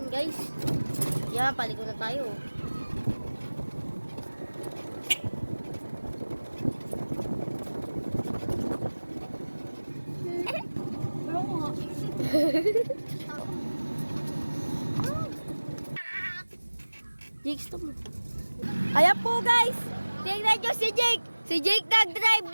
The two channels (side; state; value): both; inverted; correlation -1.00